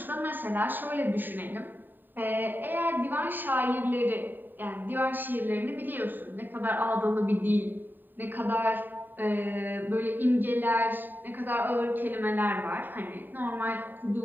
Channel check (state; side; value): late; left; 0.091 ms